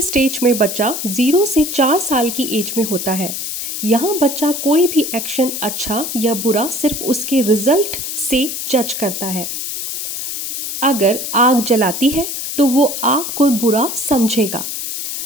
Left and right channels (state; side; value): noise; left; hiss, 5 dB below the sound